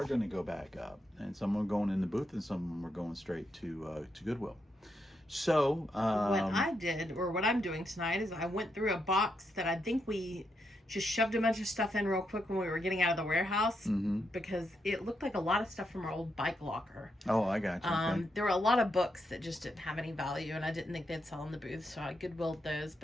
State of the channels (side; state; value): both; normal; correlation 0.82